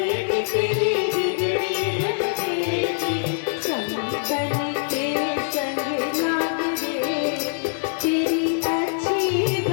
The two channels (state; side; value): silent; right; digital silence